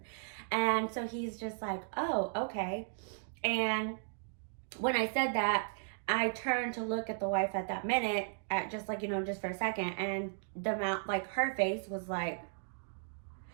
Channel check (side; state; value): left; silent; digital silence